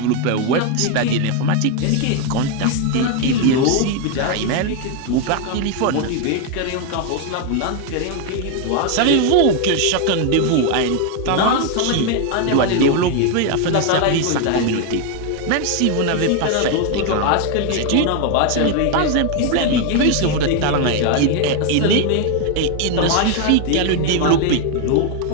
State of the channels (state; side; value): different; both; correlation 0.01